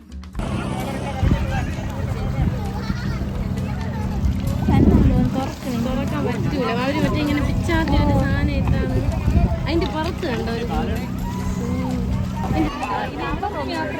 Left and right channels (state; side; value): identical; both; correlation 1.00